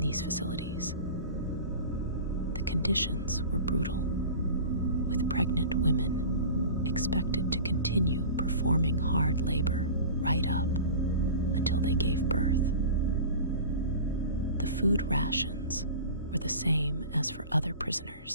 facilities. The conditions were brutal, with pregnant women expected to continue performing hard labor right up until they gave birth. The food rations were the same as for other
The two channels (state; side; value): inverted; both; correlation -0.36